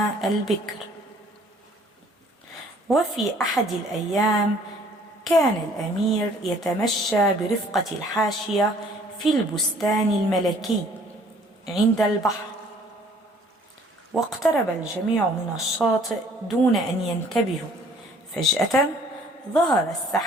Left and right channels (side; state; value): both; normal; correlation 0.57